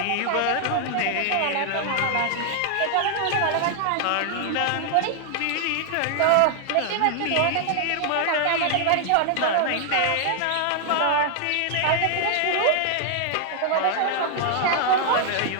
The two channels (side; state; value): both; different; correlation 0.00